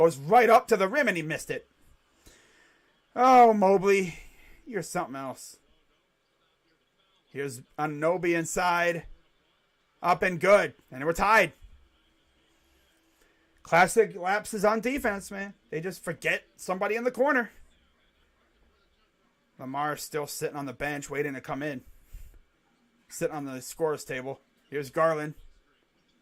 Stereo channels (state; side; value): identical; both; correlation 1.00